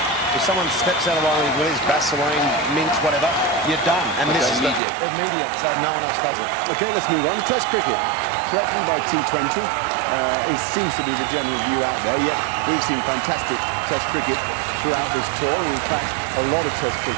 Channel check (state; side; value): drops out; left; at 4.8 s